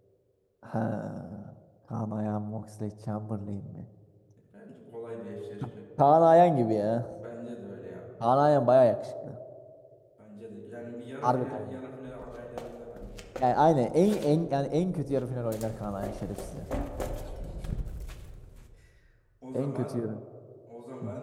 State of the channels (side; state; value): both; identical; correlation 1.00